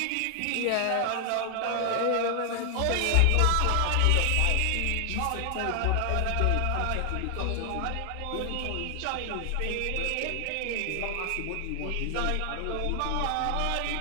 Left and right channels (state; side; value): different; both; correlation 0.00